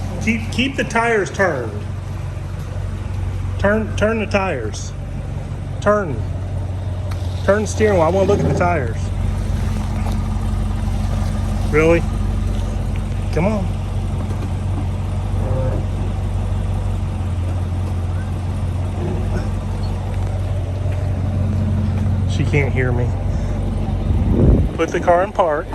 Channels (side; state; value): both; identical; correlation 1.00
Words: keep the tires turned. Turn the tires. Turn the steering wheel. I want to look at the tires. Really? Come on. She can't hear me. Put the car in park.